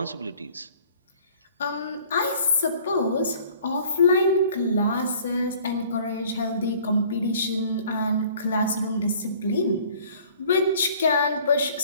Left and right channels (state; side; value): inverted; both; correlation -0.53